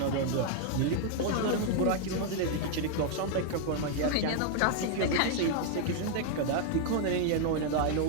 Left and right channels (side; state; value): both; different; correlation 0.00